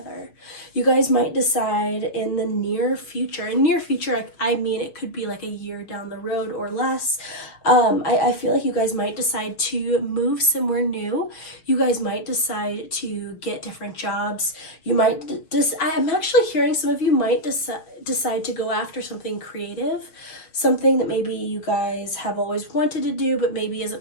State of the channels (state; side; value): late; right; 6.5 ms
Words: You guys might decide in the near future, I mean it could be like a year down the road or less. I feel like you guys might decide to move somewhere new. You guys might decide to get different jobs. You might I'm actually hearing some of you might decide to go after something creative, something that maybe you guys have always wanted to do but maybe